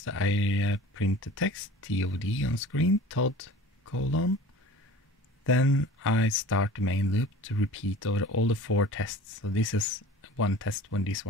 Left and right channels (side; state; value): both; normal; correlation 0.42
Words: I print the text TOD on screen, Todd : then I start the main loop to repeat over all the 4 tests. So this is one test when this